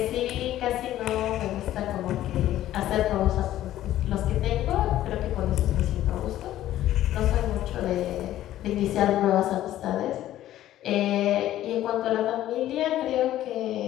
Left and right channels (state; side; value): quieter; right; 13.3 dB